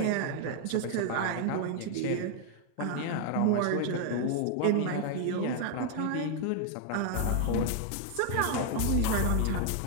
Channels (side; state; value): both; different; correlation 0.00